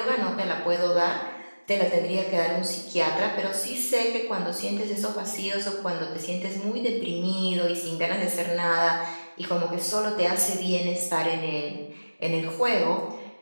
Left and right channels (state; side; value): inverted; both; correlation -1.00